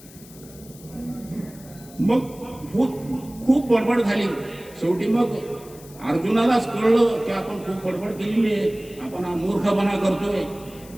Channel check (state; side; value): noise; left; hiss, 21 dB below the sound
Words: मग खूप बडबड झाली. शेवटी मग अर्जुनालाच कळलं की आपण खूप बडबड केलेली आहे, आपण हा मूर्खपणा करतोय.